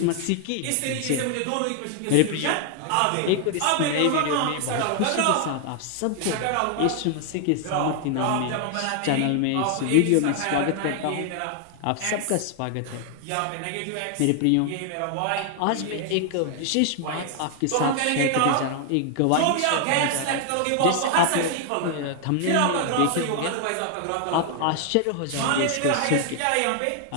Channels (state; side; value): different; both; correlation 0.00